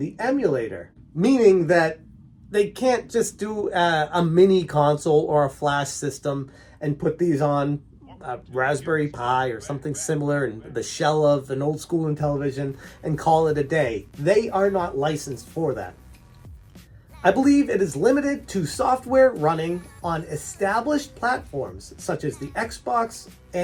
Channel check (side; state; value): both; identical; correlation 1.00